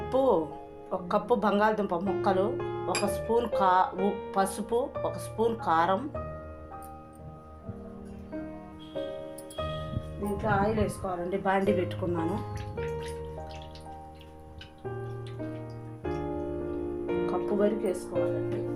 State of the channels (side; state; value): both; identical; correlation 1.00